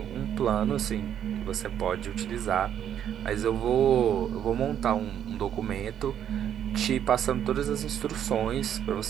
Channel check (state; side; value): quieter; left; 9.7 dB